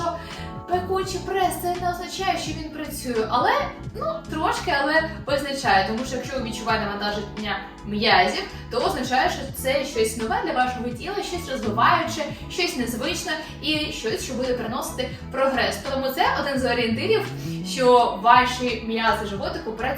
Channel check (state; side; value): identical; both; correlation 1.00